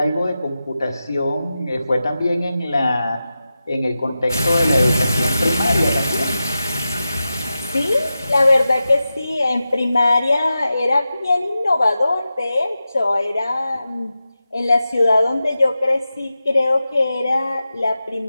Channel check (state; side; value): inverted; both; correlation -0.92